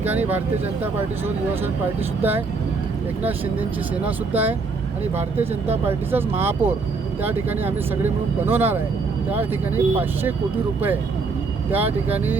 भारतीय जनता पार्टीसोबत युवासेना पार्टीसुद्धा आहे, एकनाथ शिंदेंची सेनासुद्धा आहे आणि भारतीय जनता पार्टीचाच महापौर त्या ठिकाणी आम्ही सगळे मिळून बनवणार आहे. त्या ठिकाणी 500 कोटी रुपये त्या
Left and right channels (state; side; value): quieter; left; 4.3 dB